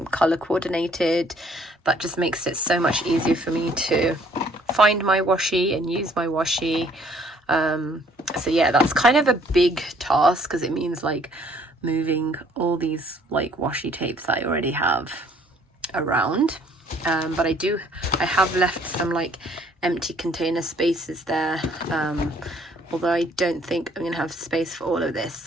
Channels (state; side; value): normal; both; correlation 0.61